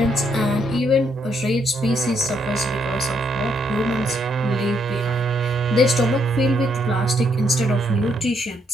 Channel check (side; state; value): both; normal; correlation 0.73